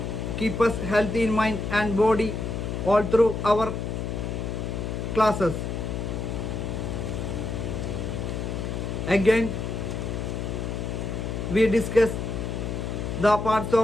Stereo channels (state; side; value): noise; left; hum, 3 dB below the sound